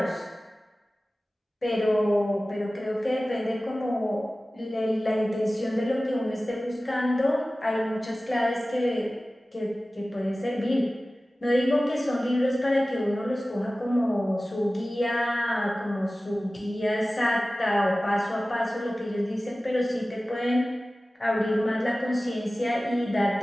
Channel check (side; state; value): both; normal; correlation 0.97